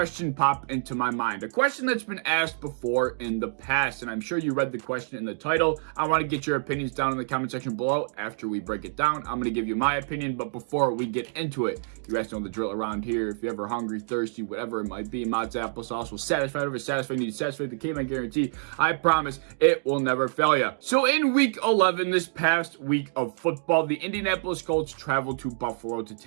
pop into my mind. A question that's been asked before in the past, and I'm sure you read the question in the title. I want to get your opinions down in the comment section below. After we break it down, I'm going to give you my opinion, but before we get into it, you guys know the drill around here. If you're ever hungry, thirsty, whatever it might be, Mott's applesauce will satisfy whatever satisfying needs. Satisfy the Caveman guarantee. I promise it will never fail you. So in week 11, this past week of football, the Indianapolis Colts traveled to Buffalo to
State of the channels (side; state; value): left; silent; digital silence